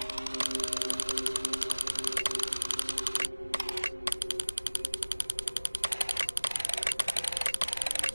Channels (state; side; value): inverted; both; correlation -1.00